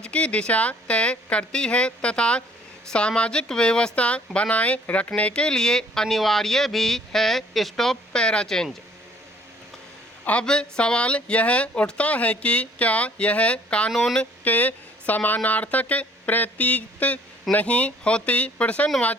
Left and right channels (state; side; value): normal; both; correlation 0.57